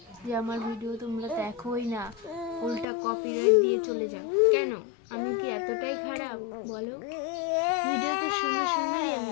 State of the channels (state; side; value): drops out; right; at 2.9 s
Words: যে আমার ভিডিও তোমরা দেখোই না, উল্টা কপিরাইট দিয়ে চলে যাও? কেন? আমি কি এতটাই খারাপ বলো? ভিডিও তো সুন্দর সুন্দরই